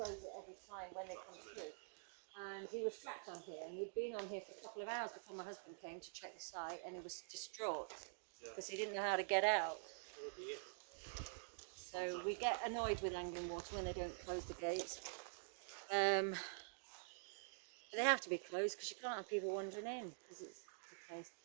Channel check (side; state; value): left; silent; digital silence